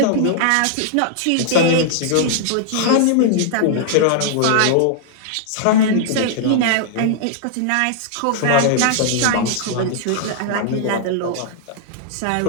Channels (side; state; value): both; different; correlation -0.01